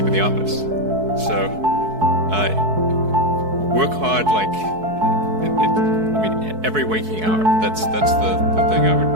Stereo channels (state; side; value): late; left; 4.6 ms